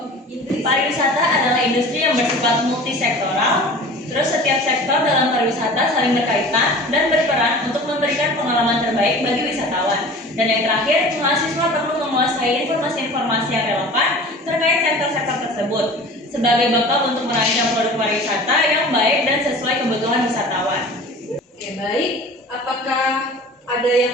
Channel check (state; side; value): normal; both; correlation 0.41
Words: Pariwisata adalah industri yang bersifat multisektoral. Terus setiap sektor dalam pariwisata saling berkaitan dan berperan untuk memberikan pengalaman terbaik bagi wisatawan. Dan yang terakhir, mahasiswa perlu menguasai informasi-informasi yang relevan terkait sektor-sektor tersebut sebagai bekal untuk merancang produk pariwisata yang baik dan sesuai kebutuhan wisatawan. Oke, baik. Apakah ada